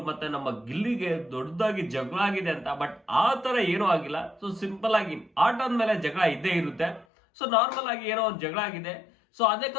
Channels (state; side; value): drops out; right; at 7.1 s